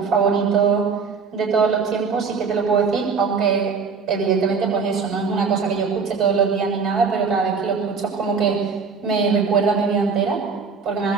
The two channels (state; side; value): quieter; left; 5.3 dB